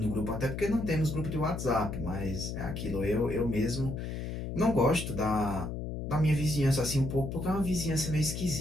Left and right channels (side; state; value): left; noise; hum, 5 dB below the sound